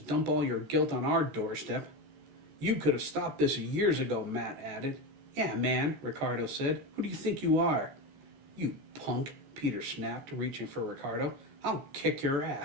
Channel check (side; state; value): left; late; 14 ms